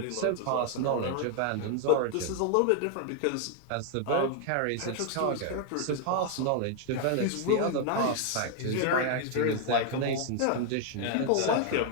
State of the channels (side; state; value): both; different; correlation 0.00